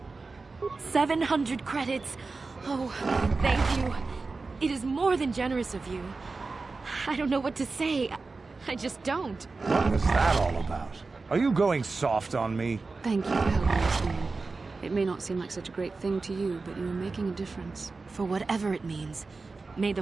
700 credits. Oh, thank you. It is more than generous of you. I don't know what to say. I just don't. What was that all about? Are you going soft on me? Thank you for helping us, man. It may not seem like such a great thing to you, but you are making a difference. For whatever it means, may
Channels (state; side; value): quieter; left; 3.9 dB